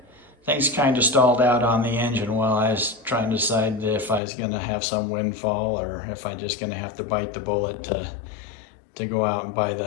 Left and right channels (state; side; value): drops out; right; at 4.2 s